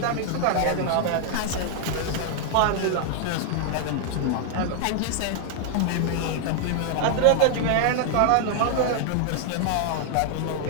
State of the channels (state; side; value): different; both; correlation 0.00